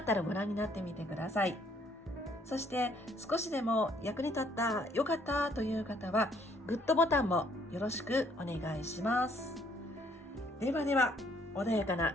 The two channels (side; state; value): both; normal; correlation 0.65